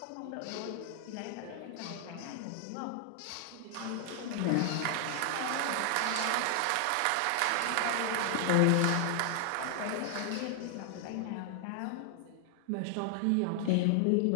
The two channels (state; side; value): different; both; correlation 0.00